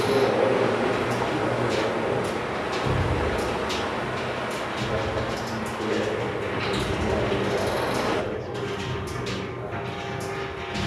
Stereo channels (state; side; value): identical; both; correlation 1.00